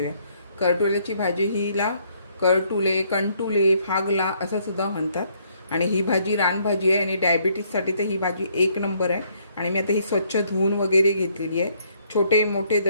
करटुल्याची भाजी हिला करटुले, कंटुले, फागला असं सुद्धा म्हणतात आणि ही भाजी रानभाजी आहे आणि डायबिटीजसाठी तर ही भाजी एक नंबर आहे। आणि मी आता ही स्वच्छ धुवून वगैरे घेतलेली आहे। छोटे मोठे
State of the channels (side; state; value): both; inverted; correlation -0.68